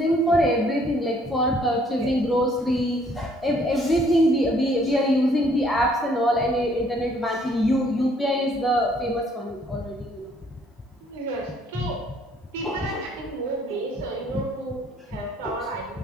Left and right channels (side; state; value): both; normal; correlation 0.63